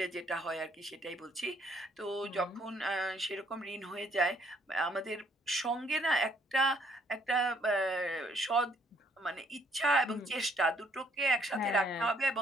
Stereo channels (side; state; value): both; normal; correlation 0.67